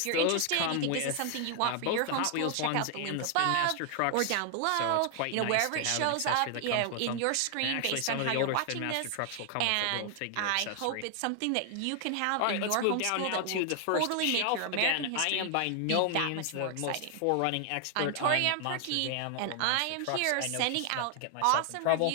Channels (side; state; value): both; different; correlation 0.00